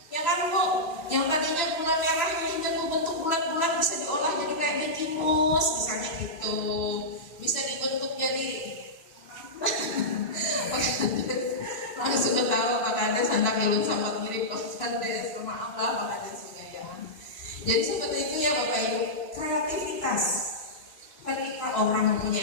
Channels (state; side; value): late; right; 3.0 ms